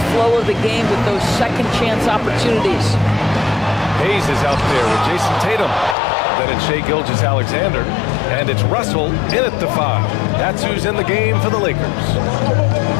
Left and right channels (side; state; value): right; drops out; at 6.0 s